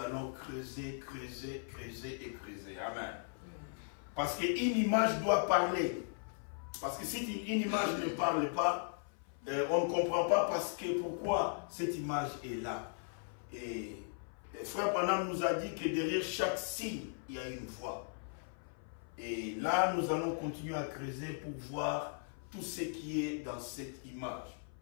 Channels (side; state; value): right; silent; 53 dB below the other